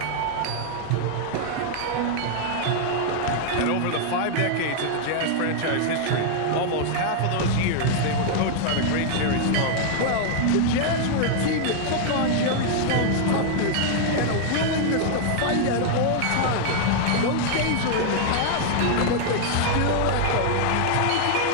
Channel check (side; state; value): both; different; correlation 0.00